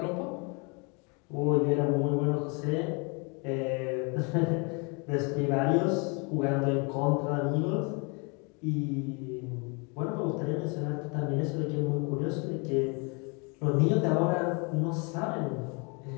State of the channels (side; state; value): right; quieter; 32.4 dB